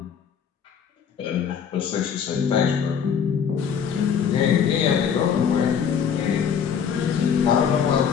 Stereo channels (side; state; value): right; quieter; 7.4 dB